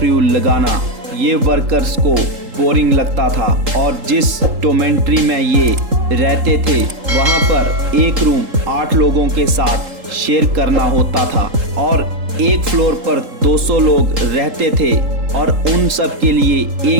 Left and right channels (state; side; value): late; left; 3.8 ms